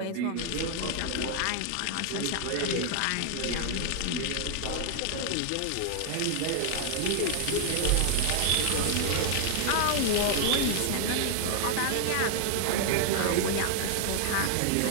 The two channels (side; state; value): both; different; correlation 0.00